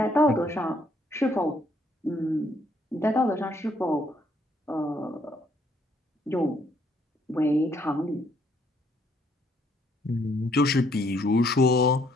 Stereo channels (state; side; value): normal; both; correlation 0.69